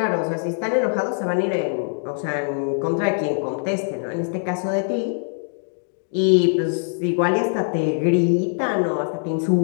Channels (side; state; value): right; silent; digital silence